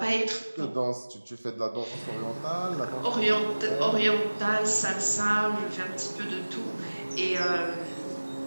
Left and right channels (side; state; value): both; inverted; correlation -1.00